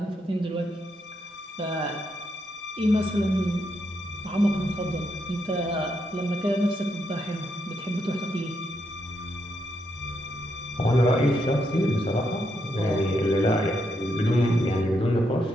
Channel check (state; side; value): normal; both; correlation 0.80